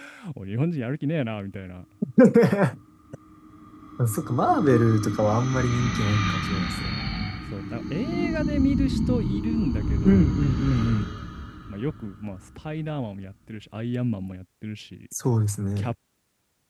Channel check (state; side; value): identical; both; correlation 1.00